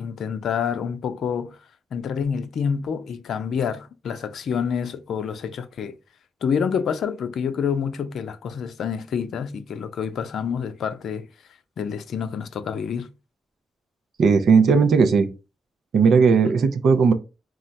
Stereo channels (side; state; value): both; normal; correlation 0.73